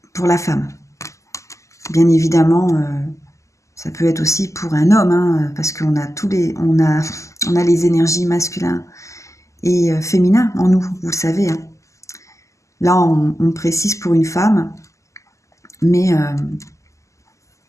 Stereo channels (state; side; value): late; right; 0.15 ms